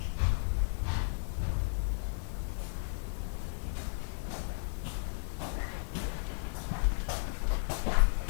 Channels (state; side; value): silent; right; digital silence